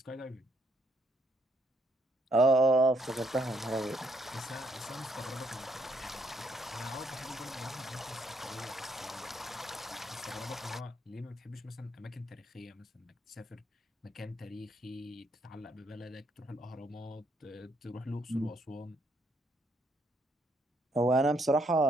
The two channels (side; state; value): both; normal; correlation 0.72